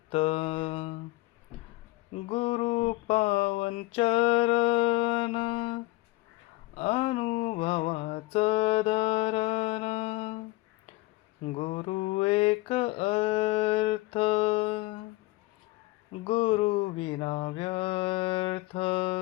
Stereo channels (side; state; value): right; quieter; 20.3 dB